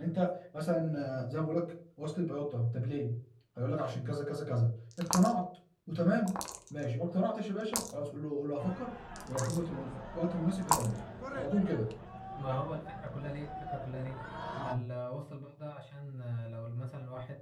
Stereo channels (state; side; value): identical; both; correlation 1.00